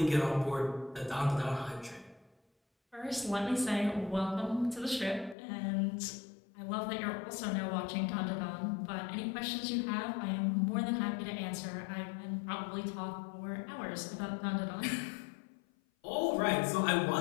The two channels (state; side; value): drops out; right; at 5.4 s